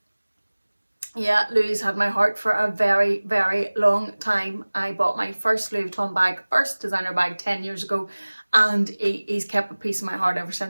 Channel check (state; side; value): inverted; both; correlation -1.00